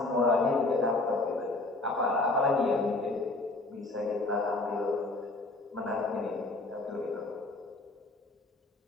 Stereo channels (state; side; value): quieter; right; 3.0 dB